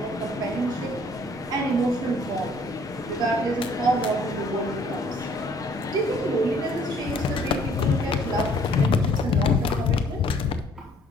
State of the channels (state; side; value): normal; both; correlation 0.60